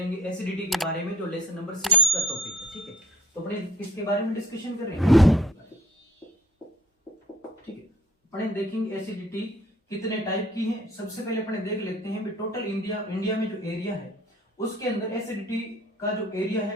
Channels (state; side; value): normal; both; correlation 0.54